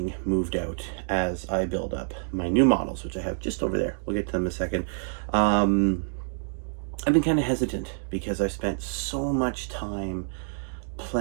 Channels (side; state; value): left; silent; digital silence